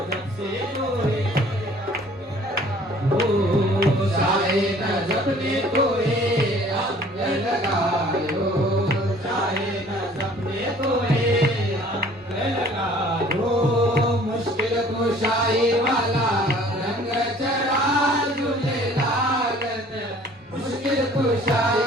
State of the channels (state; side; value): normal; both; correlation 0.53